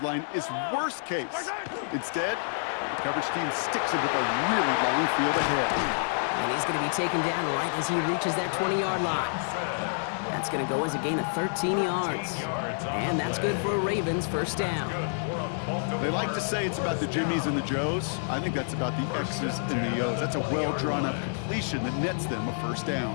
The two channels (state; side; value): silent; right; 59 dB below the other